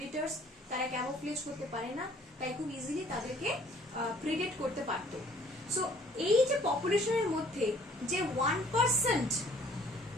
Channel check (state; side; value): normal; both; correlation 0.57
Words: তারা ক্যামোফ্লেজ করতে পারে না, তাই খুব ইজিলি তাদেরকে প্রেডেট করতে পারতো। সো এই যে পপুলেশনের মধ্যে যে 1%